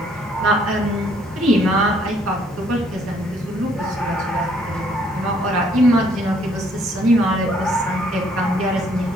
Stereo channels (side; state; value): both; normal; correlation 0.64